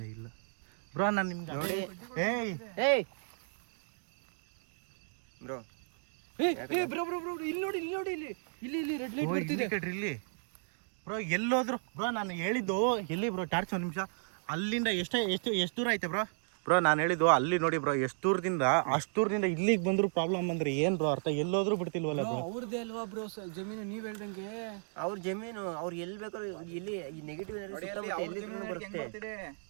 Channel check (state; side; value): silent; left; digital silence